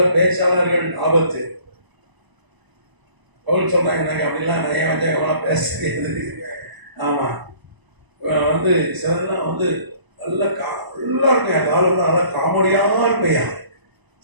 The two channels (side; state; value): left; late; 1.0 ms